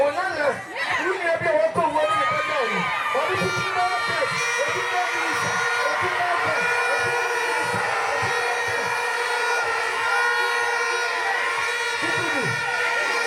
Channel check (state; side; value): identical; both; correlation 1.00